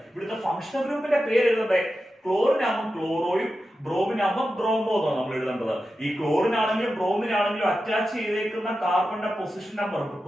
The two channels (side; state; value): both; normal; correlation 0.91